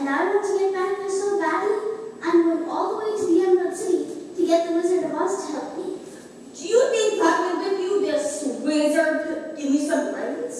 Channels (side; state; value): both; identical; correlation 1.00